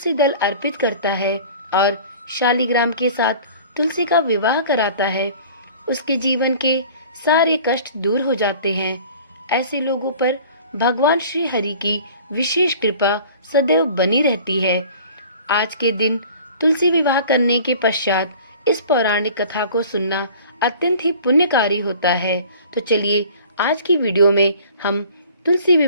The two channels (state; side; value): inverted; both; correlation -0.46